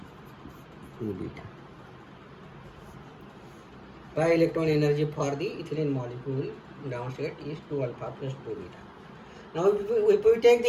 2 beta. Pi electron energy for the ethylene molecule ground state is 2 alpha plus 2 beta. Now if we take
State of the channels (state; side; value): identical; both; correlation 1.00